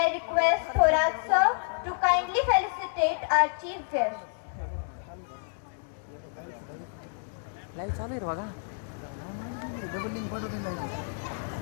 request Thorat sir to kindly felicitate our chief guest. Live चालू आहे बघा. Double link पाठवते नाही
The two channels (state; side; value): silent; right; 58 dB below the other